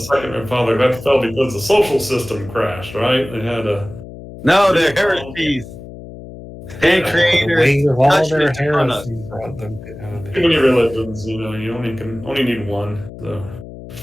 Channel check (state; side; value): noise; left; hum, 14 dB below the sound